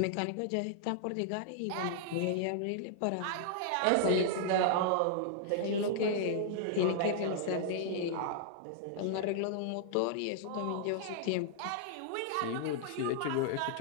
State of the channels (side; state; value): both; different; correlation -0.01